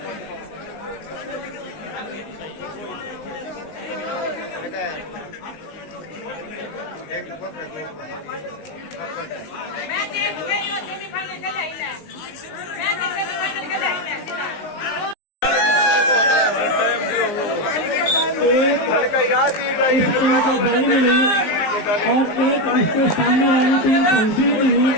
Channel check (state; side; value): late; right; 19 ms